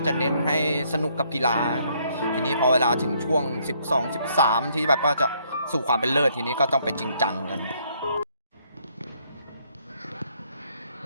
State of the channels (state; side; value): inverted; both; correlation -0.69